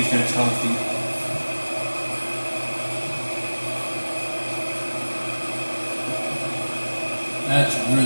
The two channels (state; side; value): inverted; both; correlation -1.00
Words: that's healthy. That's